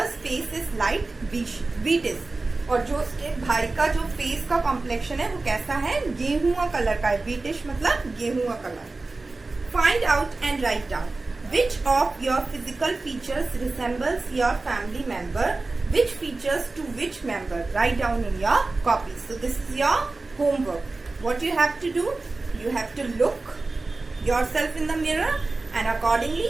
face is light wheatish. और जो उसके भाई का जो फेस का कॉम्प्लेक्शन है वो कैसा है, गेहुआ कलर का है। वीटिश मतलब गेहुआ colour. Find out and write down which of your physical features resembles your family member, which features to which member. Write down in your copy. So this is your homework. What you have to do, you have to look yourself in the mirror and accordingly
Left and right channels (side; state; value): left; quieter; 3.4 dB